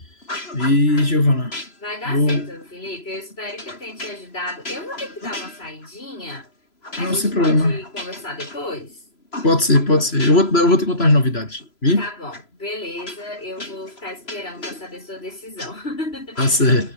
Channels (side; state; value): right; late; 3.0 ms